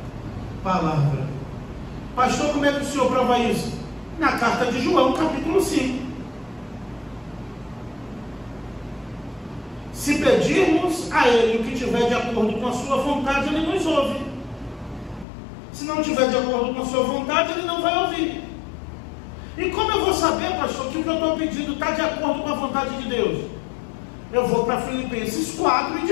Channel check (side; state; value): right; drops out; at 15.2 s